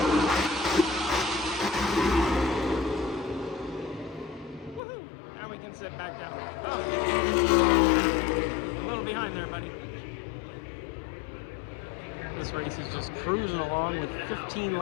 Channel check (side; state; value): right; drops out; at 4.8 s